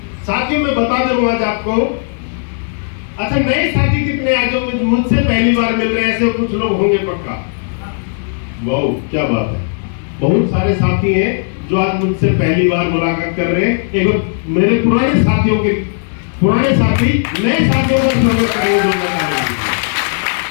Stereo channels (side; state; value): right; silent; digital silence